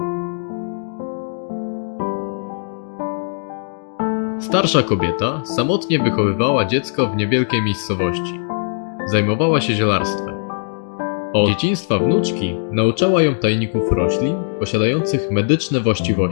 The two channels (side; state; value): right; silent; digital silence